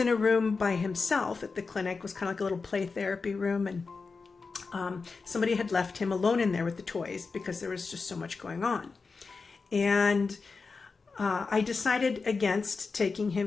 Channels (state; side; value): quieter; right; 4.5 dB